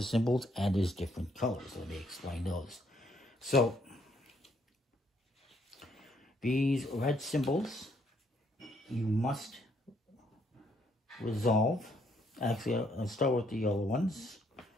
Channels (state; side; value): normal; both; correlation 0.70